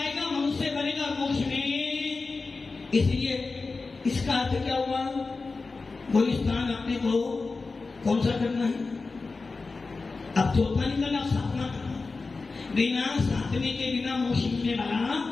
मनुष्य बनेगा मोक्ष में। इसलिए इसका अर्थ क्या हुआ? वो स्थान अपने को कौन सा करना है? अब चौथा निकला, साधना करना। बिना साधने के बिना मोक्ष मिलने वाला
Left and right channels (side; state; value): right; quieter; 4.0 dB